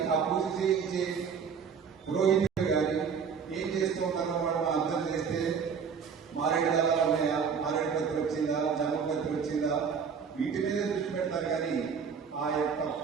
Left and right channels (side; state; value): left; quieter; 6.4 dB